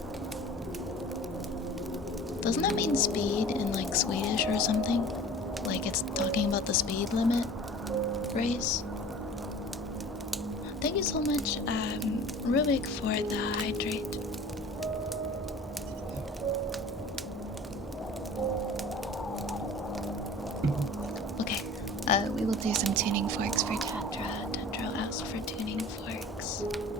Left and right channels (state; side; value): normal; both; correlation 0.43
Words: Doesn't that mean speed in like Swedish or something? Like it's talking about the speed limit race? Thank you so much, Rubik, for the hydrate. Okay, we will do some tuning forks for Tetra. Tetra asked for tuning forks